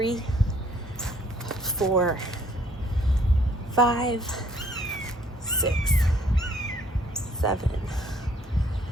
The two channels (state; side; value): normal; both; correlation 0.62